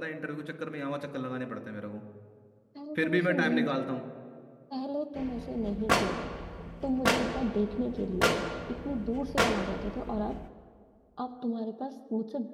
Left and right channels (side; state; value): both; identical; correlation 1.00